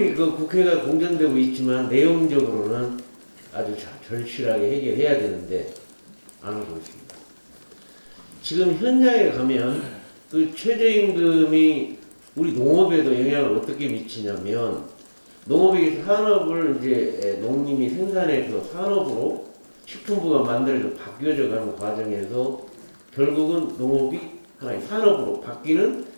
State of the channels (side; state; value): both; inverted; correlation -1.00